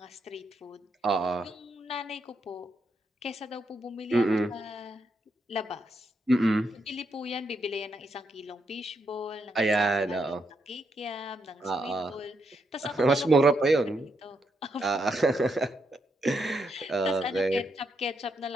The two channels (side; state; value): both; normal; correlation 0.80